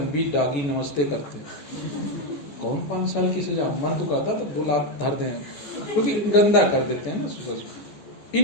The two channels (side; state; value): right; late; 14 ms